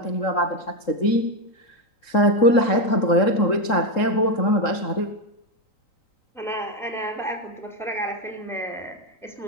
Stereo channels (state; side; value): late; right; 3.7 ms